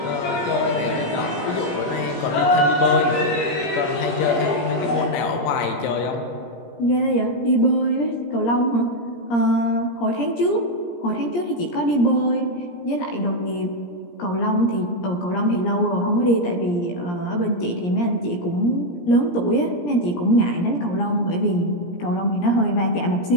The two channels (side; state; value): right; late; 17 ms